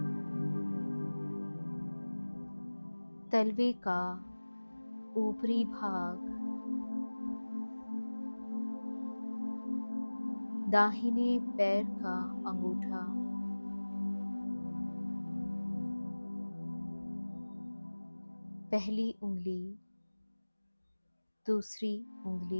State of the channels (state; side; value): inverted; both; correlation -1.00